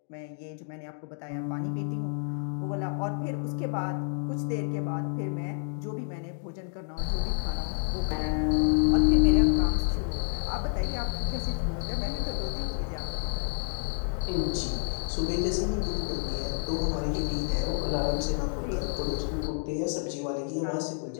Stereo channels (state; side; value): silent; right; 58 dB below the other